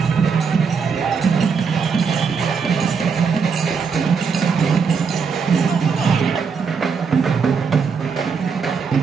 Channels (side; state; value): left; quieter; 5.8 dB